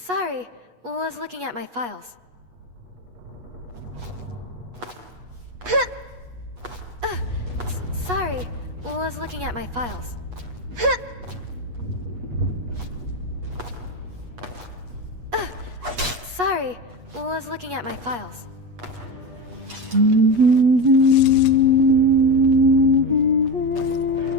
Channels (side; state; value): left; late; 8.2 ms